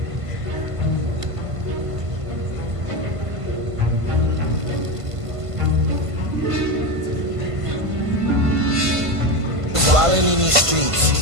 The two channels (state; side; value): late; left; 1.5 ms